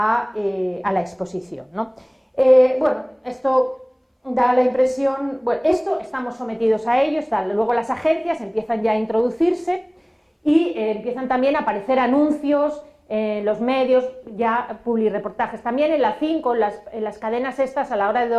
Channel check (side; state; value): both; identical; correlation 1.00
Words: la exposición, ¿no? Bueno, esto da la impresión, bueno, estamos sometidos a ello, luego las agencias empiezan ya a introducirse y empiezan también a aparecer anuncios en los medios, ya publireportajes. También en la 5, en las cadenas estas, a la hora de